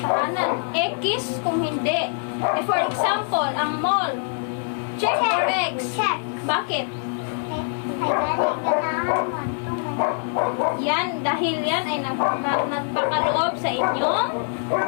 tahanan. X kung hindi. For example, ang mall. Check or X. Check. Bakit? Ay, galing ganahan mo. Yan, dahil yan ay nagpakaloob sa inyong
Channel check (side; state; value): right; silent; digital silence